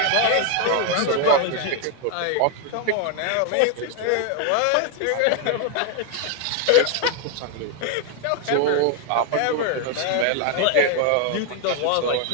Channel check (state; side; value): different; both; correlation 0.01